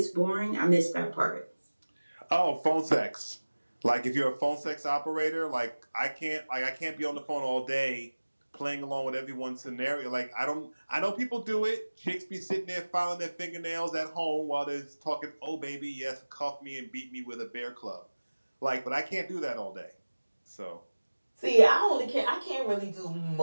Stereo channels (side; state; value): both; inverted; correlation -1.00